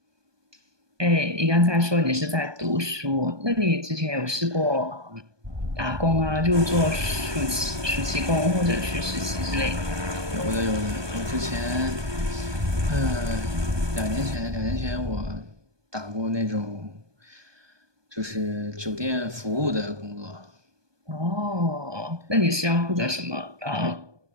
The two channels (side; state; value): left; late; 1.2 ms